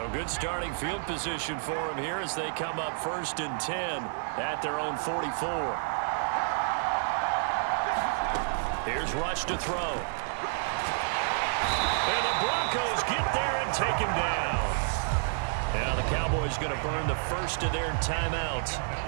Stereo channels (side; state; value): left; silent; digital silence